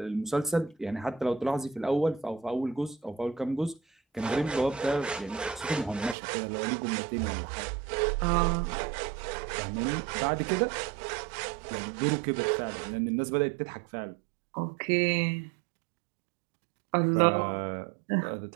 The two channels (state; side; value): drops out; left; at 6.2 s